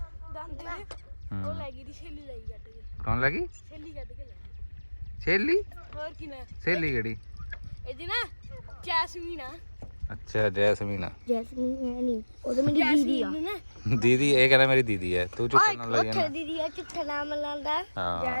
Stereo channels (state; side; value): inverted; both; correlation -1.00